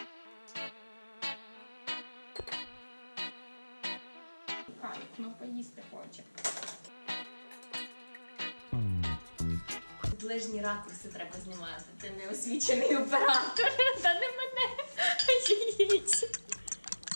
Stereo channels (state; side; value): inverted; both; correlation -1.00